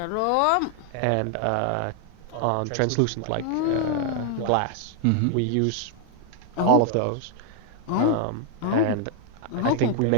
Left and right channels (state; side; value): different; both; correlation 0.00